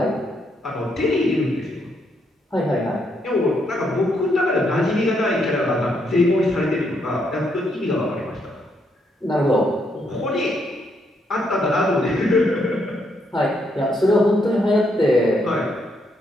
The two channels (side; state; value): both; normal; correlation 0.76